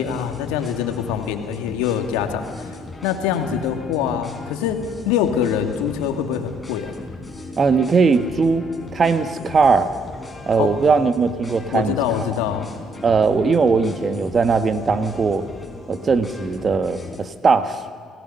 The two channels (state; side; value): normal; both; correlation 0.67